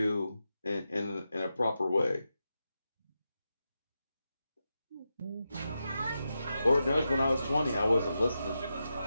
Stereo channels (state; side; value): inverted; both; correlation -0.89